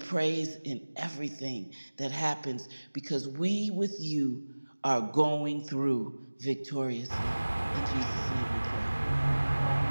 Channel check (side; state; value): both; inverted; correlation -1.00